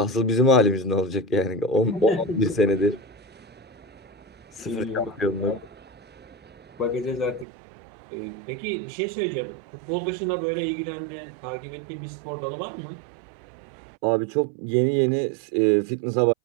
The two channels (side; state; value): left; drops out; at 7.5 s